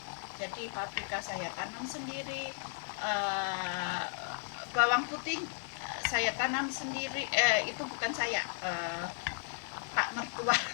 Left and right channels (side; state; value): right; silent; digital silence